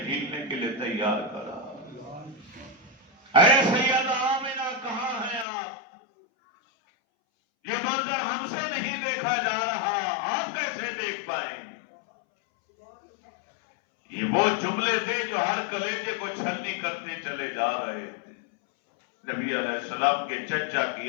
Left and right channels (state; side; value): drops out; right; at 5.5 s